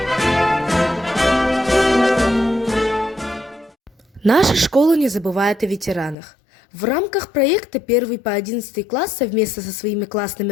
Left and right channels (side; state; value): right; drops out; at 6.2 s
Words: Наша школа не забывает о ветеранах. В рамках проекта 1 по 11 класс совместно со своими классными